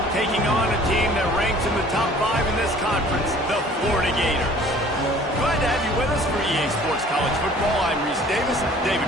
taking on a team that ranks in the top 5 in this conference, the Florida Gators. Glad to have you with us for EA Sports College Football. I'm Reese Davis, David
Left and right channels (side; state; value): both; normal; correlation 0.51